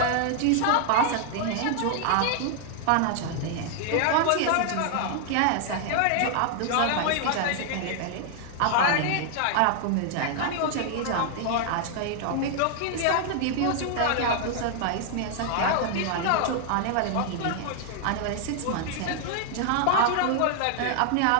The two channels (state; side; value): different; both; correlation 0.00